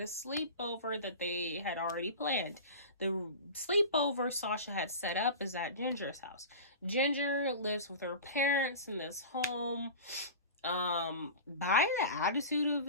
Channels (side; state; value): both; inverted; correlation -0.33